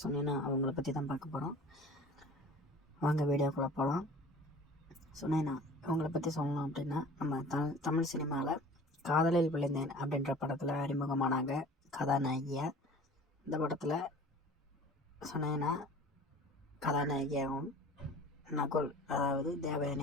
சொன்னீங்கன்னா அவங்கள பற்றி தான் பார்க்க போகிறோம். வாங்க வீடியோக்குள்ளே போகலாம். சொன்னேன்னா இவங்களை பற்றி சொல்லணும் அப்படின்னா, நம்ம தமிழ் சினிமாவில் காதலில் விழுந்தேன் அப்படின்ற படத்தில் அறிமுகமானாங்க கதாநாயகியாக. இந்த படத்தில் சொன்னேன்னா கதாநாயகியாகவும் நகுல், அதாவது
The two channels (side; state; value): both; normal; correlation 0.44